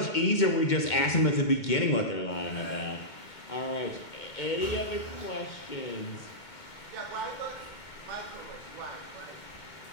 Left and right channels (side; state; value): right; late; 2.2 ms